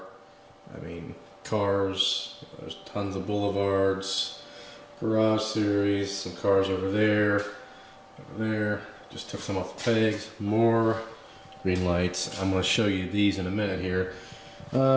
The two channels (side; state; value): both; identical; correlation 1.00